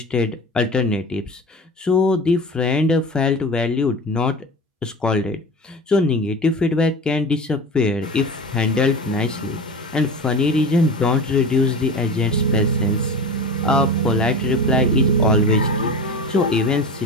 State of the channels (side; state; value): both; normal; correlation 0.31